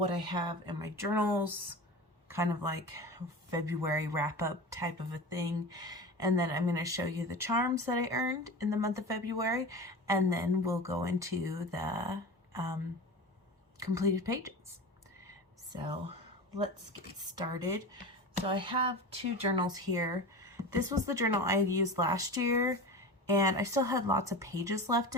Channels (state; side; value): normal; both; correlation 0.30